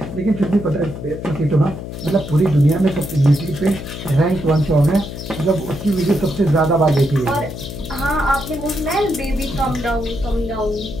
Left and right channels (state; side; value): noise; left; hum, 9 dB below the sound